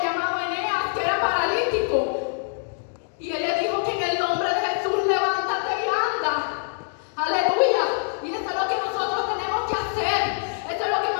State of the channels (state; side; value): silent; right; digital silence